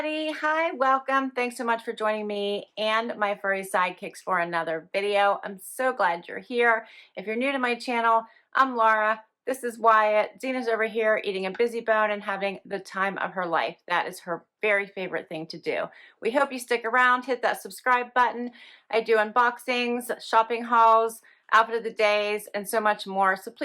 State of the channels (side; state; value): both; identical; correlation 1.00